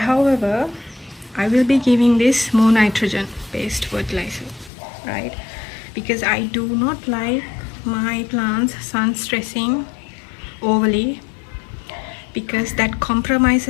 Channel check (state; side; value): drops out; right; at 4.7 s